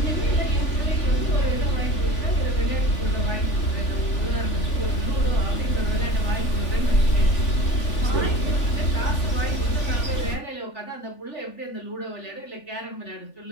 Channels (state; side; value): late; right; 3.4 ms